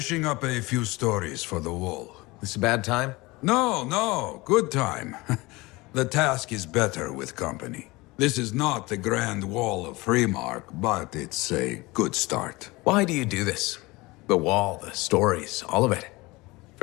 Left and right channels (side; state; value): right; quieter; 22.4 dB